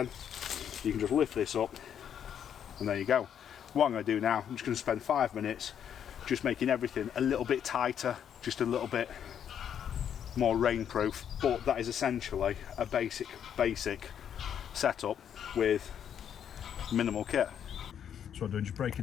you can just lift this up and there you go. What I'm going to do now, I'm just going to spend 5 minutes just making everything a little bit tighter, just a little bit more rainproof, but that is essentially a basic setup with minimal kit. So what I'm doing, just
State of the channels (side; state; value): right; quieter; 8.9 dB